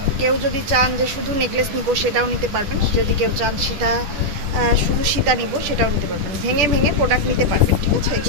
কেউ যদি চান যে শুধু নেকলেস নিব সেটাও নিতে পারবেন, যদি কেউ চান সীতা শুধু সীতা নিব সেটাও নিতে পারবেন, ভেঙে ভেঙে প্রোডাক্ট নিতে পারবেন, ঠিক আছে।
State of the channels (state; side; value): late; left; 10 ms